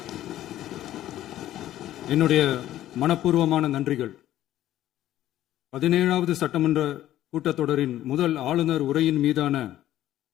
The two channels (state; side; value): quieter; right; 13.2 dB